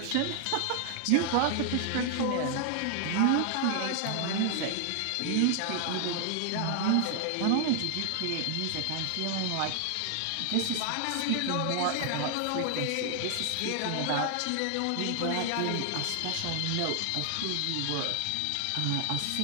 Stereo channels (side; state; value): both; different; correlation 0.00